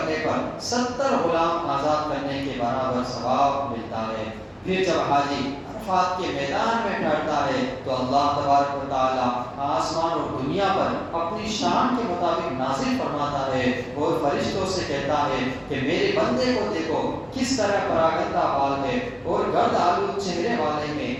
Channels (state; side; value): identical; both; correlation 1.00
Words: پر 70 غلام آزاد کرنے کے برابر ثواب ملتا ہے۔ پھر جب حاجی عرفات کے میدان میں ٹھہرتا ہے تو اللہ تبارک و تعالی آسمان اور دنیا پر اپنی شان کے مطابق نازل فرماتا ہے، اور فرشتوں سے کہتا ہے کہ میرے بندے کو دیکھو کس طرح پراگندہ بال ہے اور گرد آلود چہرے والے ہیں۔